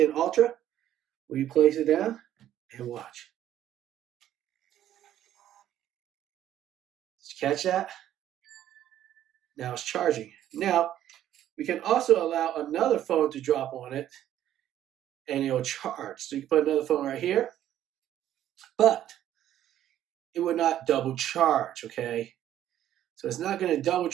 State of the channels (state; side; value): quieter; left; 11.8 dB